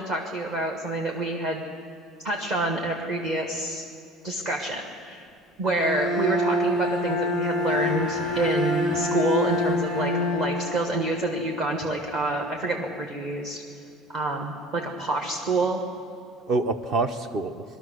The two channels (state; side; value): normal; both; correlation 0.43